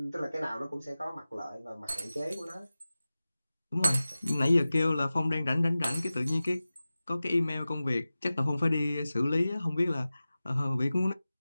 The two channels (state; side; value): inverted; both; correlation -0.96